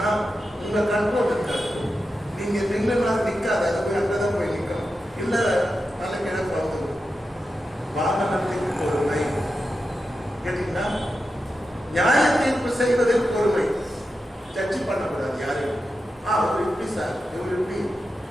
உங்க கண்ட்ரோல் இருக்காது. நீங்க நின்றுனா நிற்காது, அது போய் அங்கதான் போய் நிற்கணும். இல்ல நல்ல கிழக்கு வந்து வாகனத்திற்கு பொறுமை கேட்டீங்கன்னா, நியாய தீர்ப்பு செய்வதில் பொறுமை. ஜட்ஜி பண்ணக்கூடாது யாரையும். அவர் இப்படி சார், இவர் இப்படி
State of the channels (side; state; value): both; normal; correlation 0.90